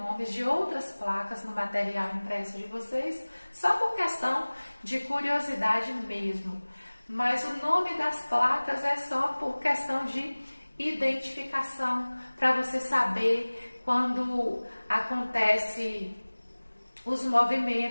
de outras placas no material impresso de vocês, só por questão de curiosidade mesmo. Mas o nome das placas é só por questão de identificação, para você saber quando acontece os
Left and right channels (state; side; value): inverted; both; correlation -1.00